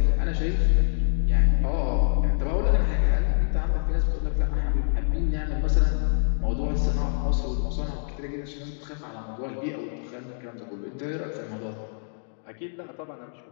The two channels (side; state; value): right; silent; digital silence